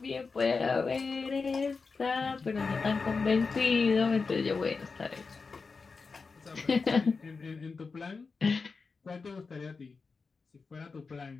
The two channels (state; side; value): quieter; right; 4.6 dB